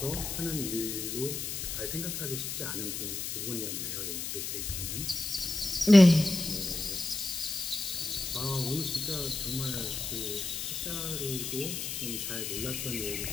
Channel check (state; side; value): noise; left; hiss, 4 dB below the sound